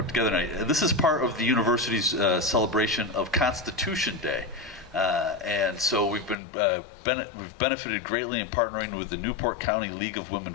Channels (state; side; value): drops out; right; at 6.4 s